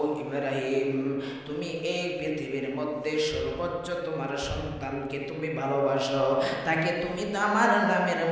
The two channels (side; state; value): both; identical; correlation 1.00